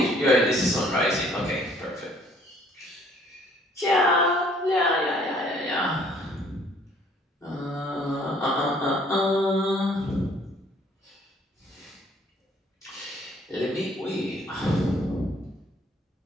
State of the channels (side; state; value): both; normal; correlation 0.60